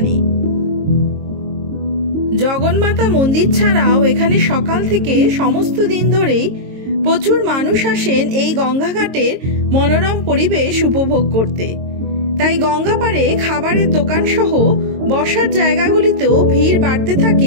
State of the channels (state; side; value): late; left; 22 ms